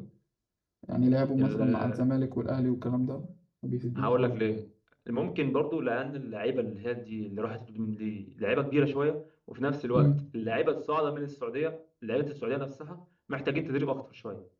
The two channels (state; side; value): identical; both; correlation 1.00